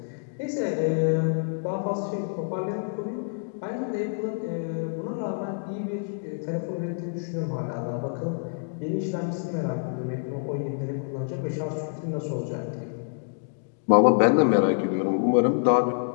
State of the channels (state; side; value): silent; right; digital silence